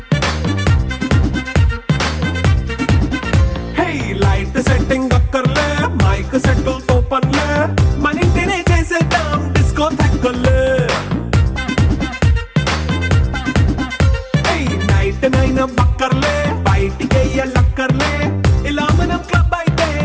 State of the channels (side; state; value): both; identical; correlation 1.00